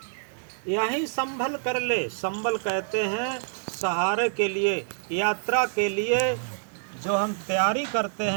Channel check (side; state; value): left; silent; digital silence